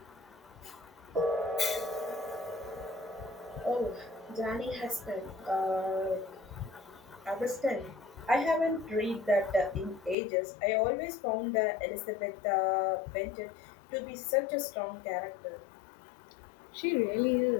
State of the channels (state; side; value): drops out; right; at 10.2 s